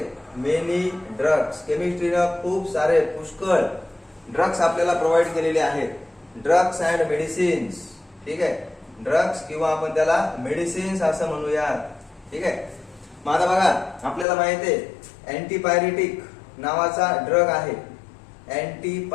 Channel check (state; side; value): drops out; right; at 14.2 s